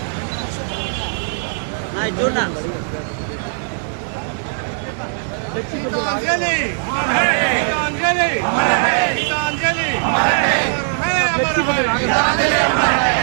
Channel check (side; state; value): left; silent; digital silence